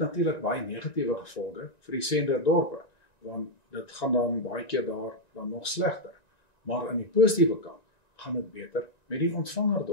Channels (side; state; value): right; late; 1.9 ms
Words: baie negatiewe gevolge vir die senderdorpe, want dit gaan dan baie keer daar dan nog slegter. Maar aan die positiewe kant gaan dit beter met die